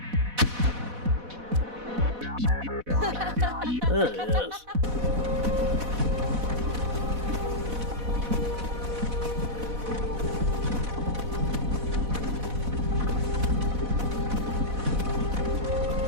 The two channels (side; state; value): left; late; 4.1 ms